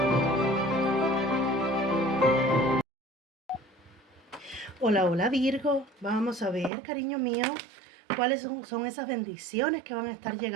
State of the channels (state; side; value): drops out; left; at 6.7 s